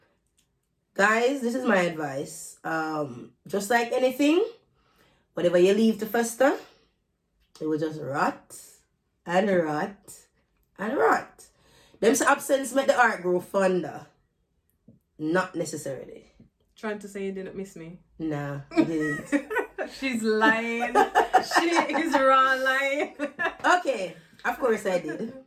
Guys, this is my advice. Just like anything, whatever you leave to fester, it will just rot and rot and rot. Them absence make the heart grow fonder. Not necessarily. Trying to say you didn't miss me? Nah, I didn't. She's lying. She is raw lying. Okay, of course I did.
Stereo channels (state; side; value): identical; both; correlation 1.00